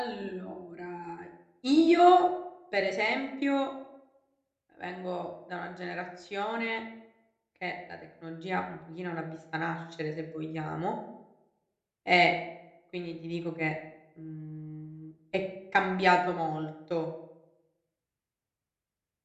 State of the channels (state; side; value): identical; both; correlation 1.00